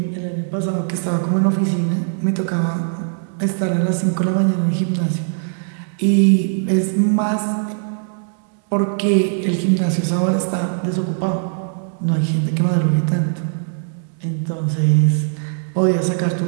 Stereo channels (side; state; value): left; silent; digital silence